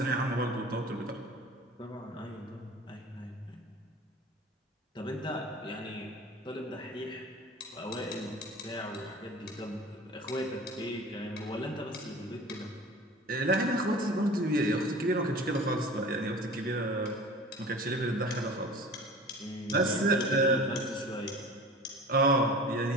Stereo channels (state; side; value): normal; both; correlation 0.40